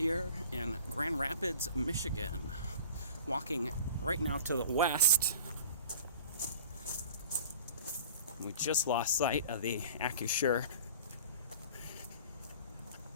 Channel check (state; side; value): inverted; both; correlation -0.43